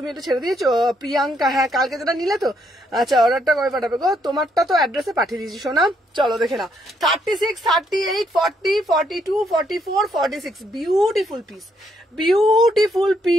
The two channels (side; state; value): both; normal; correlation 0.73